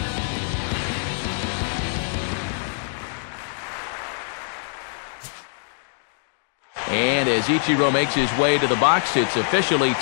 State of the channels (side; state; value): right; silent; digital silence